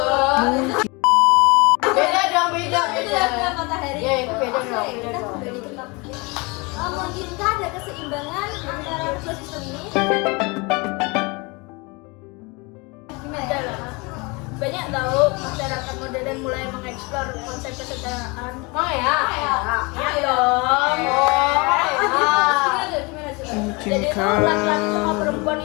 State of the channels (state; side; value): quieter; right; 27.5 dB